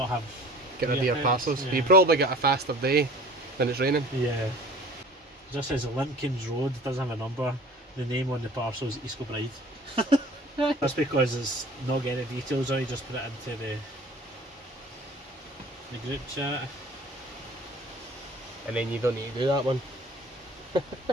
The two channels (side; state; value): both; normal; correlation 0.46